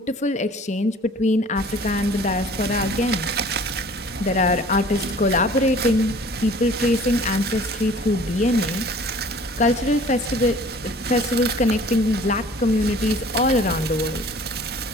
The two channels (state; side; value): normal; both; correlation 0.49